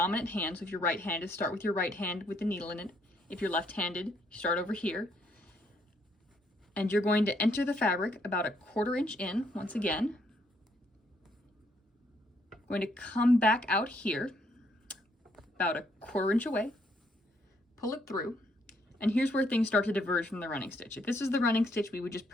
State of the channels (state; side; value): normal; both; correlation 0.71